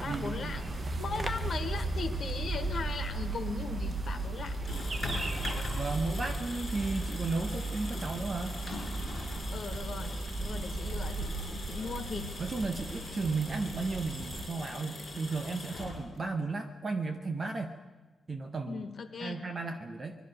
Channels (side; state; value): both; normal; correlation 0.83